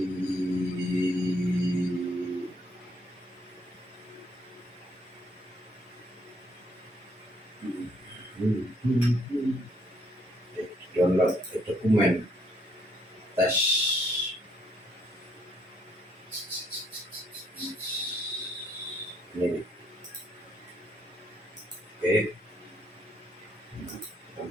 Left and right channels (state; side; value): normal; both; correlation 0.68